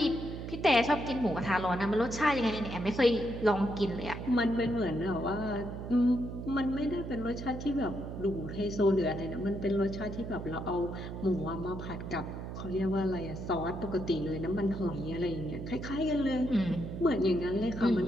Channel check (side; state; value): right; noise; hum, 8 dB below the sound